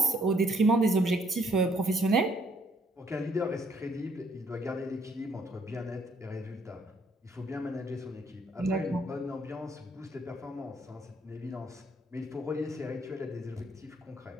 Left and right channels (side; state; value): both; normal; correlation 0.67